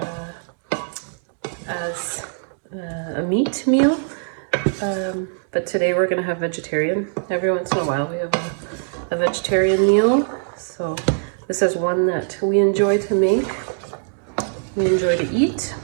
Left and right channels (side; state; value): left; silent; 64 dB below the other